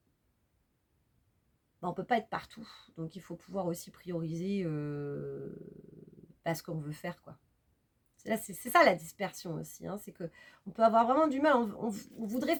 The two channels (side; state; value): both; identical; correlation 1.00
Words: ne peut pas être partout, donc il faut pouvoir aussi prioriser ce qu'on veut faire, quoi. C'est ça la dispersion aussi, hein, c'est qu'on peut avoir vraiment du mal, on voudrait